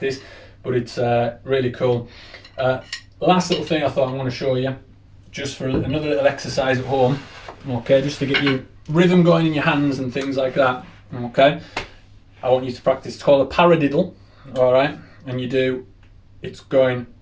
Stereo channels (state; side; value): identical; both; correlation 1.00